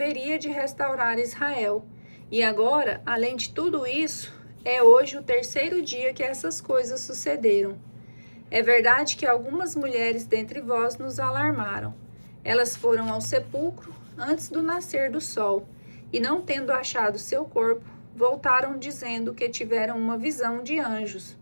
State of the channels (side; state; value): both; inverted; correlation -1.00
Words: de restaurar Israel. E agora, além de tudo isso, é hoje o 3º dia que essas coisas sucederam. É verdade que algumas mulheres dentre vós nos alarmaram. Elas foram ao sepulcro antes do nascer do sol, e não tendo achado seu corpo, voltaram dizendo que tiveram uma visão de anjos,